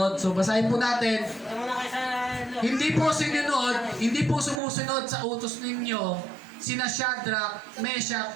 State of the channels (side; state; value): left; drops out; at 4.6 s